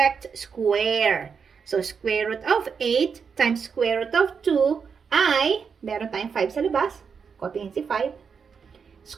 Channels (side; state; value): left; quieter; 6.1 dB